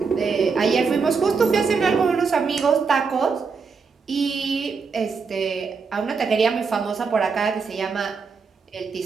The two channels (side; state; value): left; quieter; 5.1 dB